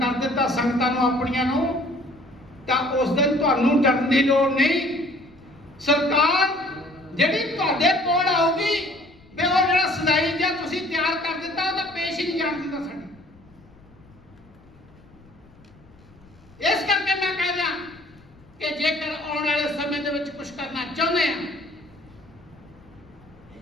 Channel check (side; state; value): left; noise; rumble, 26 dB below the sound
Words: ਕਰ ਦਿੱਤਾ ਸੰਗਤਾਂ ਨੂੰ ਆਪਣੀਆਂ ਨੂੰ, ਤਾਂ ਉਸ ਦਿਨ ਤੁਹਾਨੂੰ ਡਰਨ ਦੀ ਲੋੜ ਨਹੀਂ। ਸਰਕਾਰ ਜਿਹੜੀ ਤੁਹਾਡੇ ਕੋਲ ਆਊਗੀ, ਵੀ ਉਹ ਜਿਹੜਾ ਸਦਾਈ ਜਾਂ ਤੁਸੀਂ ਤਿਆਰ ਕਰ ਦਿੱਤਾ, ਉਹ ਤਾਂ ਪੇਸ਼ ਹੀ ਨਹੀਂ ਜਾਣ ਦਿੰਦਾ ਸਾਡੀ। ਇਸ ਕਰਕੇ ਮੈਂ ਕਹਿ ਰਿਹਾ ਕਿ ਜੇਕਰ ਆਉਣ ਵਾਲੇ ਸਮੇਂ ਦੇ ਵਿੱਚ ਕੁਝ ਕਰਨਾ ਚਾਹੁੰਦੇ ਆ,